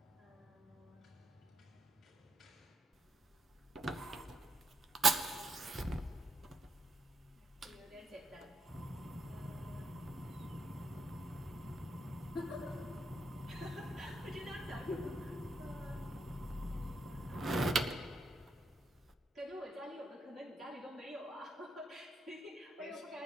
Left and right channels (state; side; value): normal; both; correlation 0.80